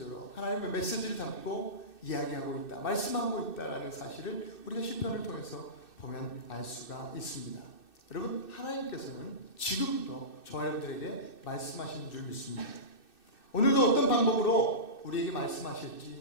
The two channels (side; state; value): right; late; 2.6 ms